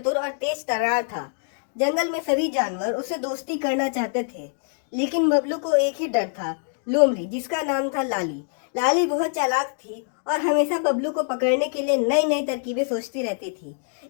और तेज तर्रार था। जंगल में सभी जानवर उससे दोस्ती करना चाहते थे, लेकिन बबलू को एक ही डर था, लोमड़ी जिसका नाम था लाली। लाली बहुत चालाक थी और हमेशा बबलू को पकड़ने के लिए नई नई तरकीबें सोचती रहती थी।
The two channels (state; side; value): silent; right; digital silence